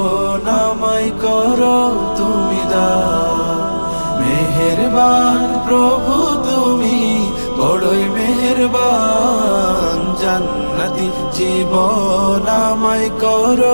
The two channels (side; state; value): both; inverted; correlation -1.00